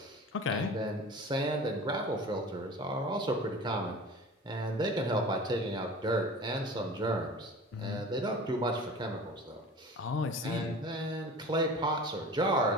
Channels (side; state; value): both; normal; correlation 0.39